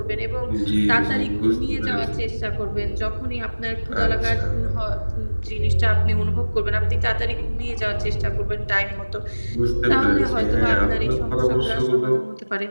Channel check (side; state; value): both; inverted; correlation -1.00